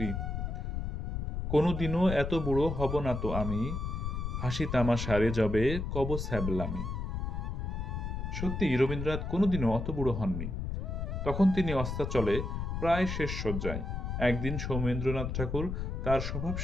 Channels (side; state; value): left; noise; rumble, 3 dB below the sound